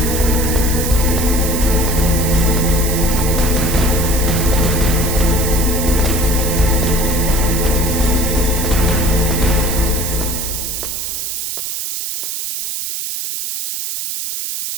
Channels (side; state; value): right; noise; hiss, 4 dB below the sound